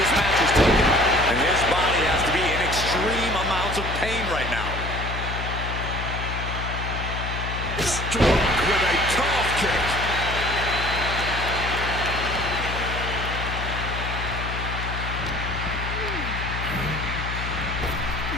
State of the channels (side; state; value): left; noise; hum, 5 dB below the sound